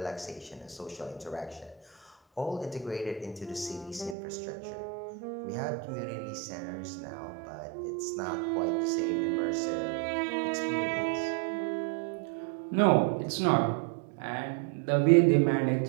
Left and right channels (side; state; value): left; drops out; at 4.2 s